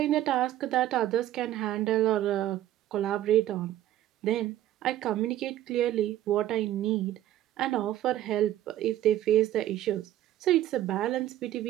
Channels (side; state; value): left; quieter; 13.1 dB